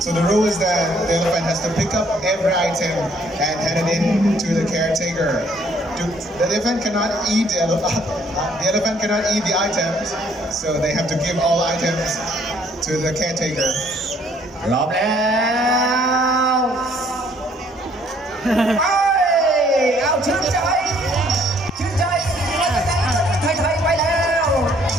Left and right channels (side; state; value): both; normal; correlation 0.63